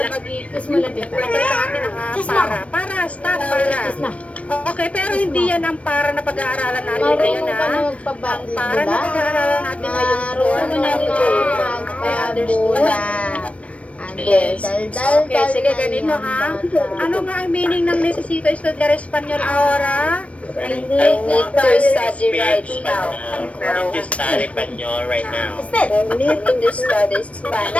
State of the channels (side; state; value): right; late; 0.064 ms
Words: magiging natin ang para, stop, para. Okay, pero hindi yan ang para na pag-aaralan natin ngayon, ha? Ang para na pag-aaralan natin ngayon, Okay, sige, ganito ha. Ano nga ang meaning ng necesito estudiar Espanyol ahora? I need to study right now. I need to study español right now. I need to study